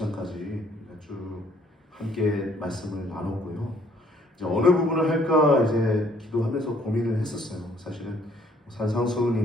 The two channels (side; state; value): both; normal; correlation 0.63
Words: 쭉 함께 말씀을 나눴고요. 이제 어느 부분을 할까 이제 기도하면서 고민을 했었어요. 사실은